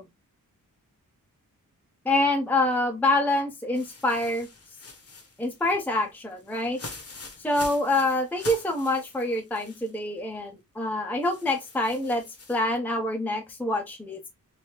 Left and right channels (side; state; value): both; normal; correlation 0.55